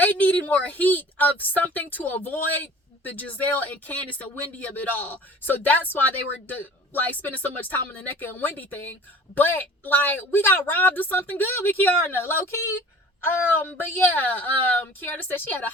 needed more heat of something to avoid the Gizelle and Candace and Wendy of it all. So that's why they were spending so much time on the Nneka and Wendy thing. But we got robbed of something good with Kiara, low key. But yeah, Kiara said she had a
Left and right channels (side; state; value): both; normal; correlation 0.45